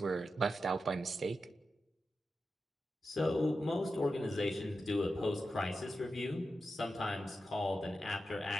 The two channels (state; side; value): normal; both; correlation 0.90